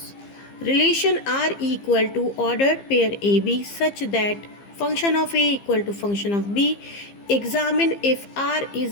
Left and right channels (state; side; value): late; right; 15 ms